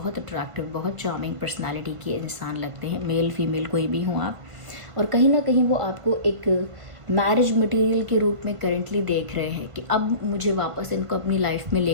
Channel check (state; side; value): late; left; 1.5 ms